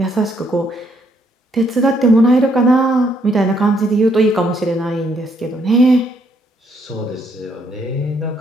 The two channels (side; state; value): both; normal; correlation 0.71